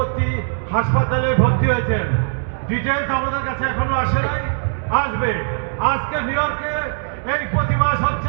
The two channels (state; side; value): silent; left; 66 dB below the other